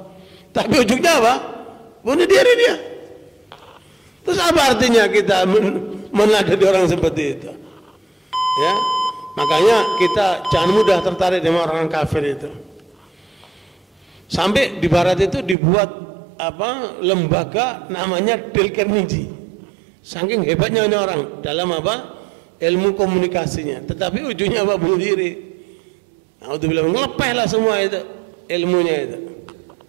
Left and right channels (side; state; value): left; drops out; at 15.6 s